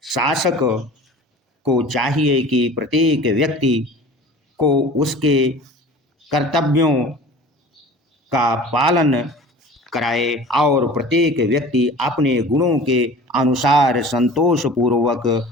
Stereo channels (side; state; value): both; normal; correlation 0.41